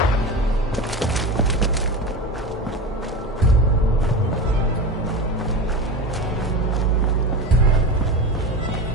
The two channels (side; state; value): both; normal; correlation 0.25